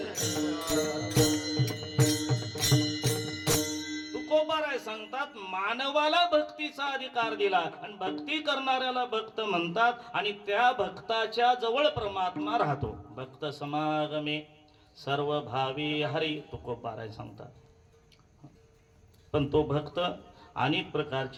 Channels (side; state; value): both; identical; correlation 1.00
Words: तुकोबाराय सांगतात मानवाला भक्तीचा अधिकार दिला आणि भक्ती करणाऱ्याला भक्त म्हणतात आणि त्या भक्ताच्या जवळ परमात्मा राहतो. भक्त समागमे सर्व भावी हरी तुकोबाराय सांगतात. पण तो भक्त अनेक